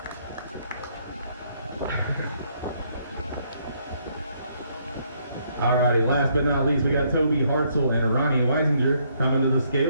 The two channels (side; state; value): both; inverted; correlation -0.70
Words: Alrighty, last but not least, we got Toby Hartzell and Ronnie Weisinger coming to the